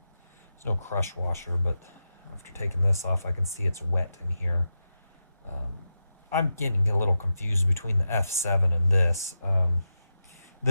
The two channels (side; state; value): both; inverted; correlation -0.89